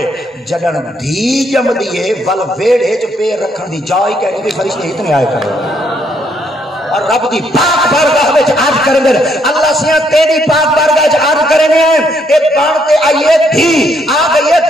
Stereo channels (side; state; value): both; normal; correlation 0.71